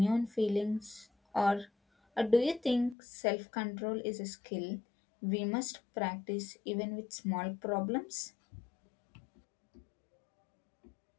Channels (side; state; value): right; drops out; at 3.0 s